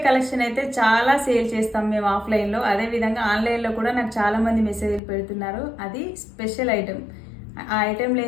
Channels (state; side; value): drops out; right; at 5.0 s